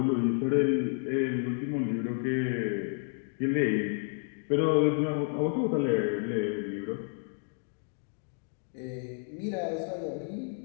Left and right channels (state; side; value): silent; right; 57 dB below the other